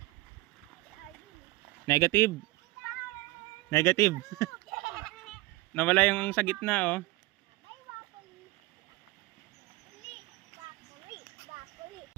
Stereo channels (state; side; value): quieter; left; 20.5 dB